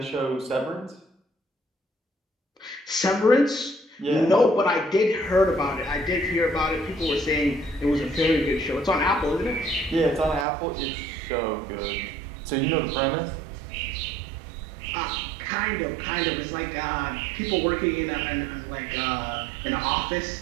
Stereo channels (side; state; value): left; drops out; at 10.5 s